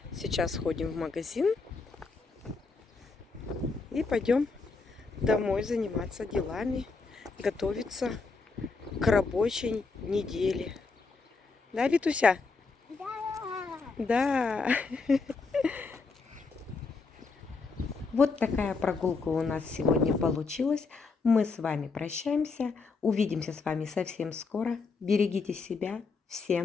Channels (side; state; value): right; quieter; 4.3 dB